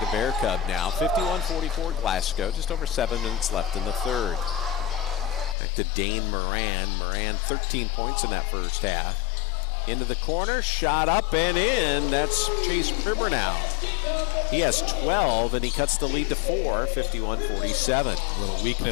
Bear Cub now. 51-44 Glasgow. Just over 7 minutes left in the third. Back to Dane Moran. Moran 13 points in that first half. Into the corner, shot up and in. That's Chase Pribernow. He has 12 and he cuts the lead to 4, 51-47. A little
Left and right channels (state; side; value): drops out; right; at 5.6 s